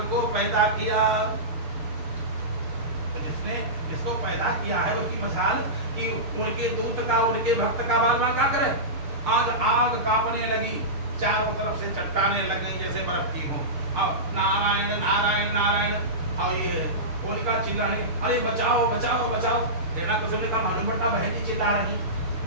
को पैदा किया। तो जिसने जिसको पैदा किया है उसकी मजाल कि उनके दूत का, उनके भक्त का बाल बाल क्या करे। आज आग कांपने लगी, चारों तरफ से चट्टाने लग गई जैसे बर्फ की हो। अब नारायण नारायण नारायण और ये होलिका चिल्लाने, अरे बचाओ बचाओ बचाओ। हिरण्यकश्यप ने कहा मालूम पड़ता बहन जी चिल्ला रही।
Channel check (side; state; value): left; late; 6.7 ms